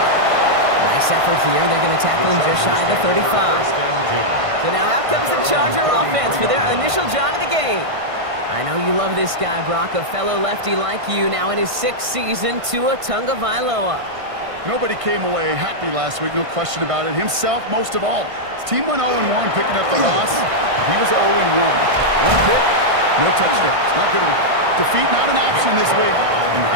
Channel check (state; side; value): late; left; 1.5 ms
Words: Nice effort here. They're going to tackle him just shy of the 35. So now out comes the Charger offense for their initial drive of the game. I know you love this guy, Brock, a fellow lefty like you, now in his 6th season, Tua Tagovailoa. Nobody came away happy last week, no question about it. Himself, most of all. His team went 0-1, picking up the loss. He was 0-1. One pick, no touchdowns. Not good enough. Defeat not an option this week, and